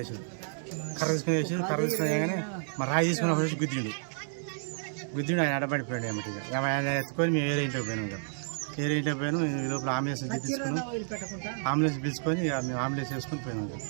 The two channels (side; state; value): left; silent; 57 dB below the other